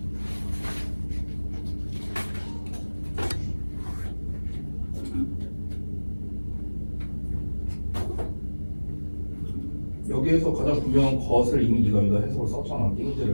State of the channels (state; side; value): inverted; both; correlation -1.00